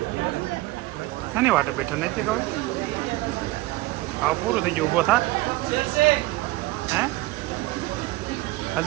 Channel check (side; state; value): left; quieter; 19.3 dB